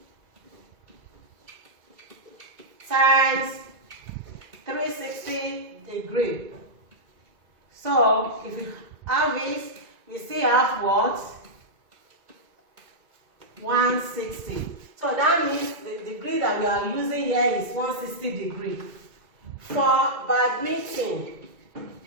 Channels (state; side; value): late; left; 2.2 ms